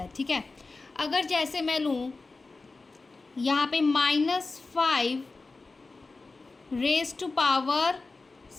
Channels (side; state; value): right; quieter; 3.7 dB